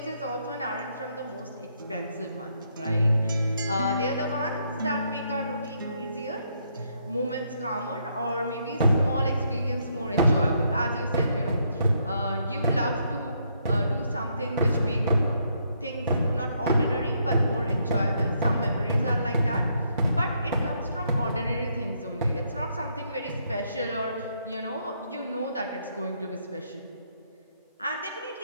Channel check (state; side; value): inverted; both; correlation -0.74